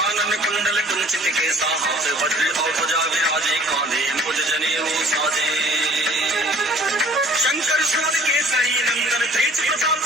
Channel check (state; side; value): normal; both; correlation 0.52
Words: कुंडल कुंचित केसा हाथ वज्र और ध्वजा विराजे कांधे मुझ जनेऊ साजे। शंकर सुत केसरी नंदन तेज प्रताप